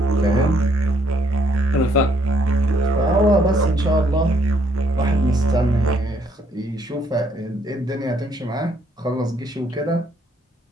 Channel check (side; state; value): both; normal; correlation 0.68